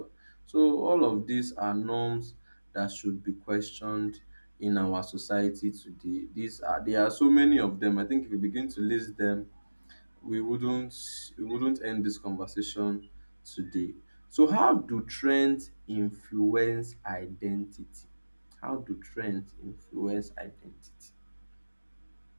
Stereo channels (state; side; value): inverted; both; correlation -1.00